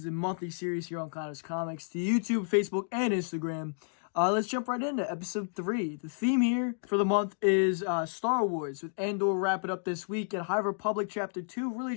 a monthly series here on Connor's Comics to YouTube, Facebook, and Instagram. Let's jump right into episode 3. The theme here for the month is Star Wars, with Andor wrapping up this week and High Republic Chapter 2 really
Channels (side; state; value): right; silent; digital silence